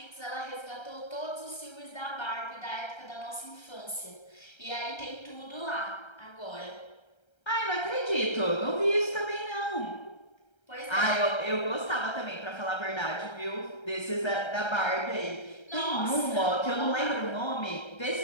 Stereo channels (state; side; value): late; right; 1.3 ms